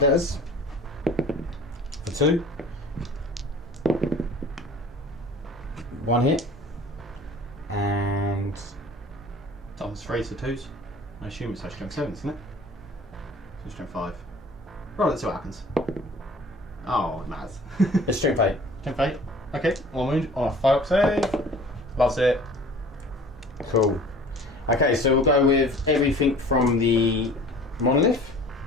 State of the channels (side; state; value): both; normal; correlation 0.46